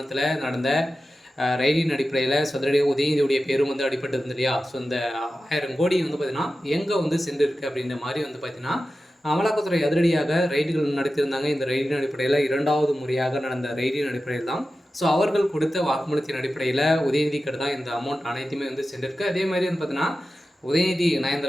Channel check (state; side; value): normal; both; correlation 0.93